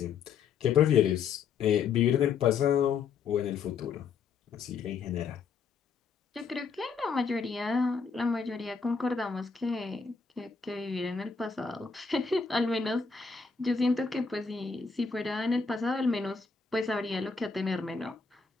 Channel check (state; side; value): quieter; right; 5.5 dB